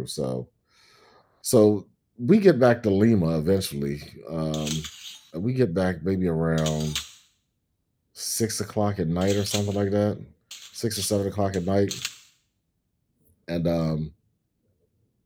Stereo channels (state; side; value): identical; both; correlation 1.00